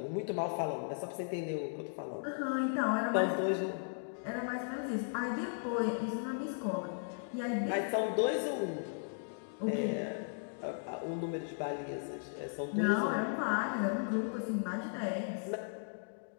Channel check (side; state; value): right; silent; digital silence